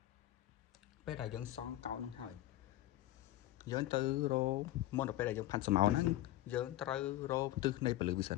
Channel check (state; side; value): quieter; right; 14.9 dB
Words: ពេលដែលយើងសង់កោណហ្នឹងហើយយើងទៅរោមុនដល់ពេលដែលយើងផាត់ស្រមោលហ្នឹងយើងត្រូវរោទិសនៃពលឺវាសិ